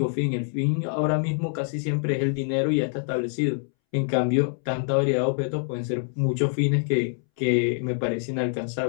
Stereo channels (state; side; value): silent; right; 61 dB below the other